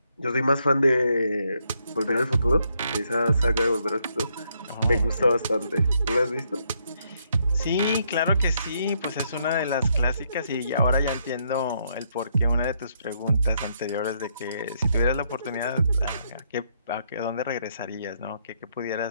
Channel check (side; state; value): both; inverted; correlation -0.74